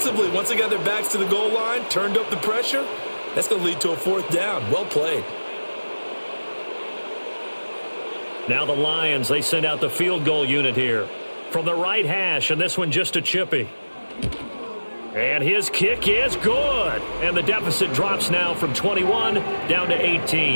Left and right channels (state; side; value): inverted; both; correlation -1.00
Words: once they got their backs to the goal line, turned up the pressure, that's going to lead to a 4th down. Well played. Now the Lions, they send out the field goal unit here. From the right hash, and this one just a chippy. And his kick is good. And the deficit drops now from 21 down to